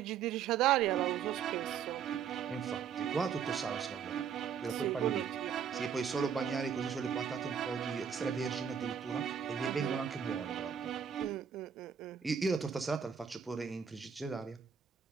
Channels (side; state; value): left; quieter; 7.5 dB